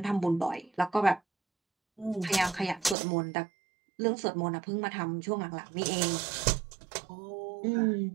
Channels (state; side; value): drops out; left; at 3.0 s